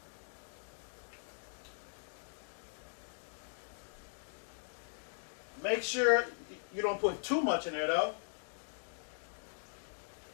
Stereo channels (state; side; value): silent; right; digital silence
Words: Make sure you don't put too much in there though.